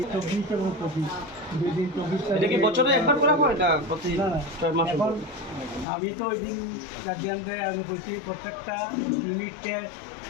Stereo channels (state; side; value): drops out; right; at 5.9 s